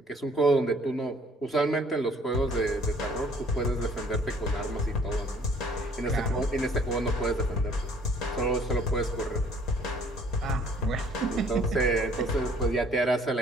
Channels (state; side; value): normal; both; correlation 0.58